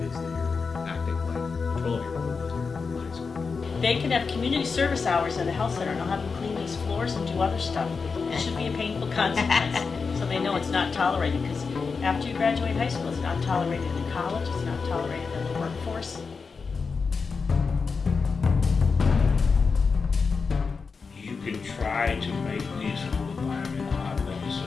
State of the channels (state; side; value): quieter; right; 5.0 dB